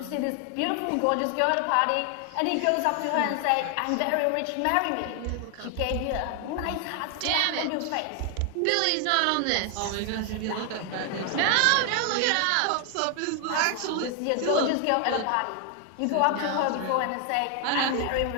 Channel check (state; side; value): different; both; correlation 0.00